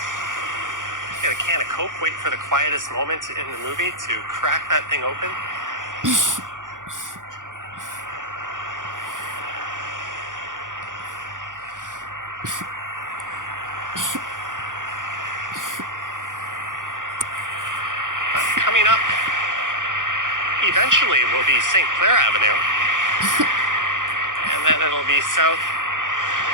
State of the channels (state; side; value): late; left; 0.88 ms